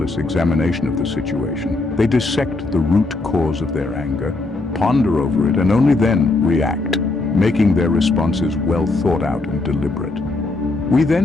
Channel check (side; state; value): right; quieter; 3.2 dB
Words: examination of the situation. They dissect the root cause of their anger, ponder over it, and only then react, making their responses well thought out and deliberate. We